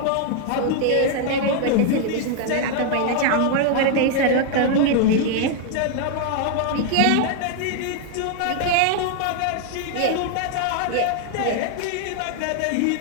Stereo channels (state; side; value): different; both; correlation 0.00